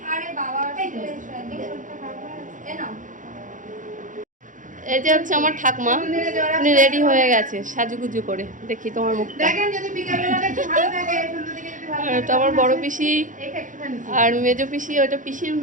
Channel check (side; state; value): left; late; 0.38 ms